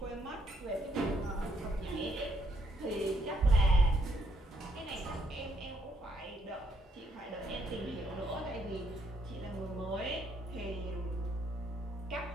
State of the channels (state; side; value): normal; both; correlation 0.72